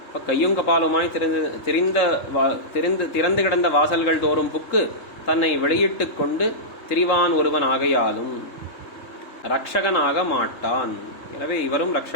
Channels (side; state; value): right; late; 3.8 ms